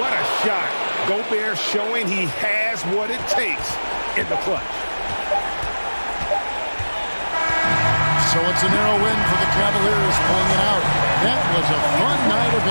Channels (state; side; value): inverted; both; correlation -1.00